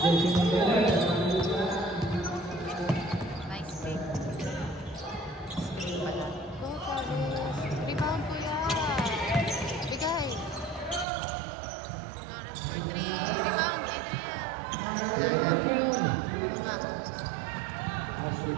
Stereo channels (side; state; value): left; drops out; at 11.1 s